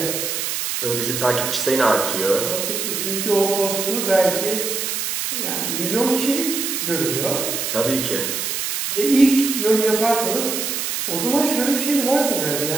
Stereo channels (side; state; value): right; noise; hiss, 2 dB below the sound